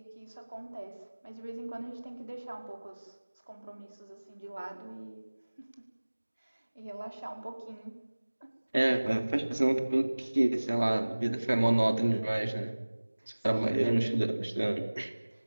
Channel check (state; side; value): inverted; both; correlation -1.00